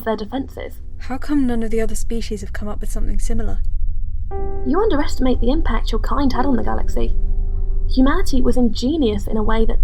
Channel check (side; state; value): both; identical; correlation 1.00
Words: their defences. How come none of the other species have come up with something similar? You underestimate the impact your kind had on the galaxy. Humanity was ingenious in a way that